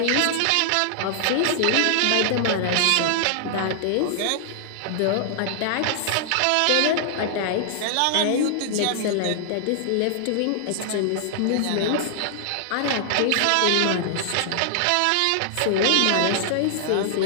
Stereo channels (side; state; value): both; different; correlation -0.01